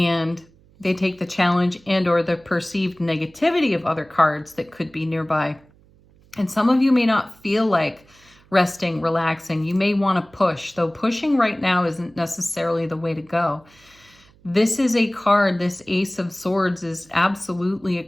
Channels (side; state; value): right; noise; hum, 29 dB below the sound